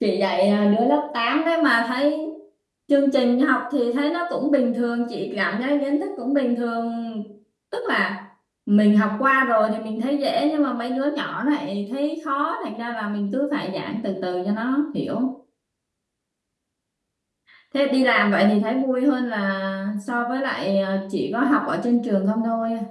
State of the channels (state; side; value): identical; both; correlation 1.00